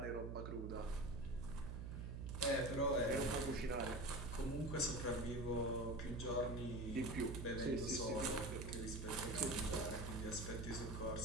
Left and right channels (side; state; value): right; noise; hum, 5 dB below the sound